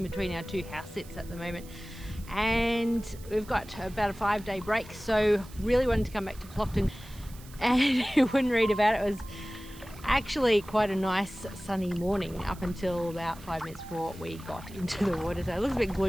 between our two house sits at the moment, and we've got about a 5-day break, so really wanted to come back to Plockton. And you wouldn't read about it, it was actually quite a nice sunny morning up until about 5 minutes before we got into the water, so it looks a bit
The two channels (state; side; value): noise; right; hiss, 21 dB below the sound